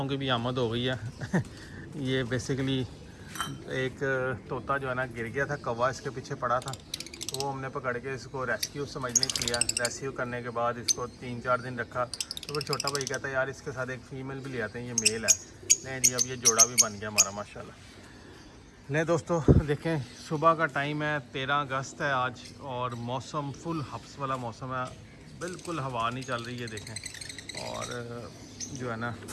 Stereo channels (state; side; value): identical; both; correlation 1.00